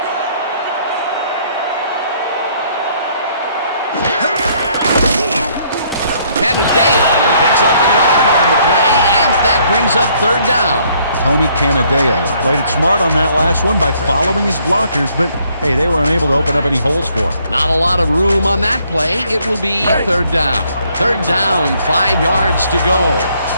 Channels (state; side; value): inverted; both; correlation -0.66